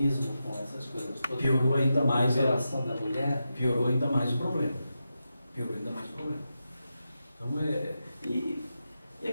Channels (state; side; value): inverted; both; correlation -0.89